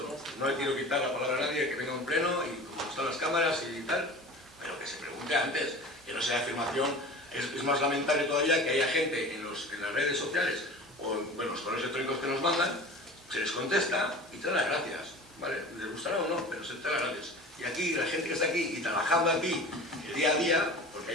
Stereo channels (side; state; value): both; normal; correlation 0.37